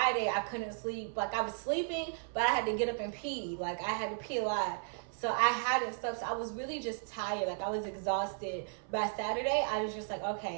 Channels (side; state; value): left; silent; 54 dB below the other